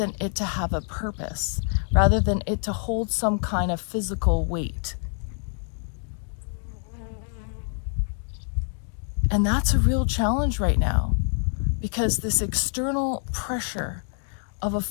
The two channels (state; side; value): silent; right; 58 dB below the other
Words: it to have a purpose, rather than it to hold some kind of physical weight. And that's a real challenge right now, because this external pressure of a